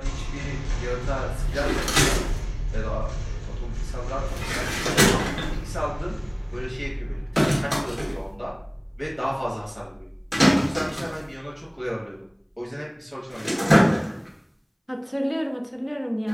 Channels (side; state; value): both; identical; correlation 1.00